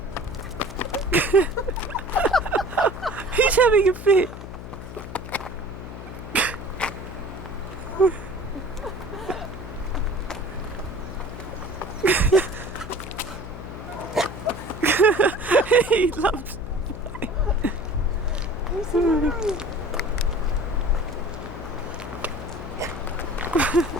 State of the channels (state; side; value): noise; left; hum, 11 dB below the sound